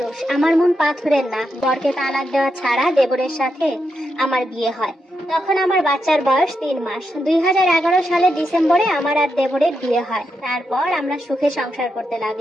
আমার মন পাথরের না। বরকে তালাক দেওয়া ছাড়া দেবরের সাথে আমার বিয়ে হয়। তখন আমার বাচ্চার বয়স 3 মাস। 2011 সালের ডিসেম্বরে আমার আর দেবরের বিয়ে হয়। তারপর আমরা সুখে সংসার করতে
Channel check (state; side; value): normal; both; correlation 0.84